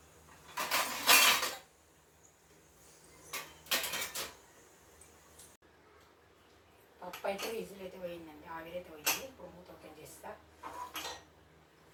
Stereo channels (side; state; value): both; identical; correlation 1.00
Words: పప్పు అయితే విజిల్ అయితే పోయిందండి, ఆవిరైతే పోయింది. ఇప్పుడు మూత ఓపెన్ చేస్తా.